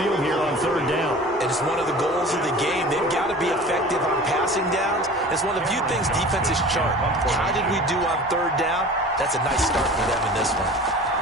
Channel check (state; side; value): normal; both; correlation 0.40